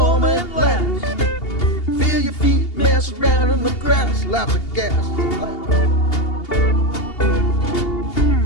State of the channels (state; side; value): late; right; 2.8 ms